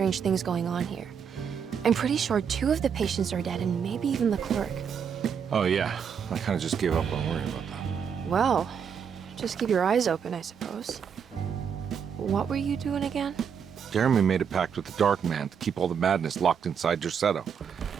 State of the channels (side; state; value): left; quieter; 7.2 dB